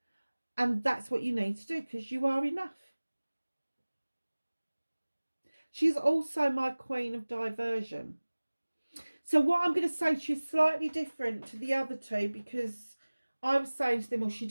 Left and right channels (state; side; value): inverted; both; correlation -1.00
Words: And that's what you need to do, because you are enough. She's also my queen of diversion. So what I'm going to say to you is slightly different to the other two, because I was saying to them, well, she